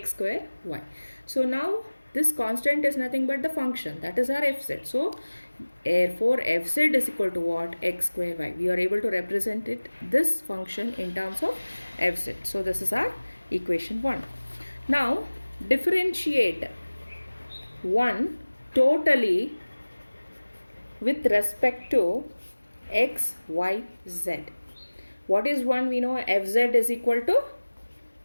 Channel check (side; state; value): both; inverted; correlation -1.00